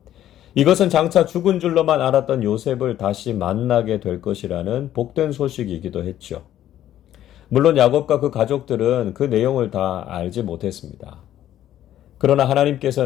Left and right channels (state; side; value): quieter; right; 12.1 dB